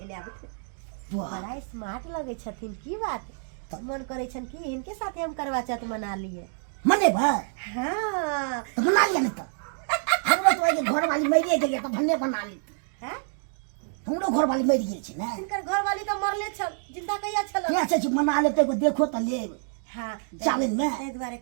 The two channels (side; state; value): left; silent; 60 dB below the other